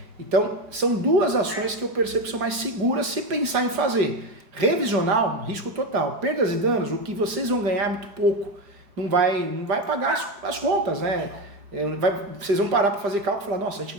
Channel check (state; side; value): late; left; 5.0 ms